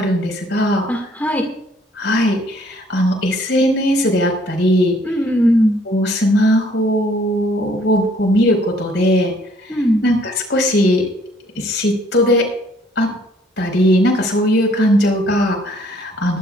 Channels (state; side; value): normal; both; correlation 0.62